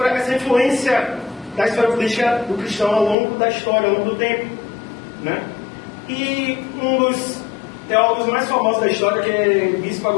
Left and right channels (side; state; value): right; drops out; at 3.2 s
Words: essa influência da história política do cristão ao longo da história, ao longo do tempo, né? E um dos teólogos mais famosos da história, que é Bispo